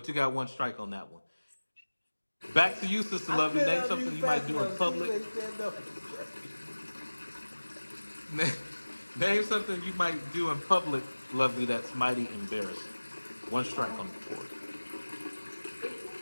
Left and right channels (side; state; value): both; inverted; correlation -1.00